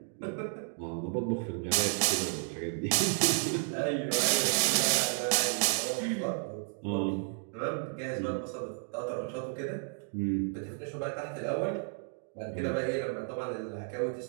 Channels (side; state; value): left; silent; 56 dB below the other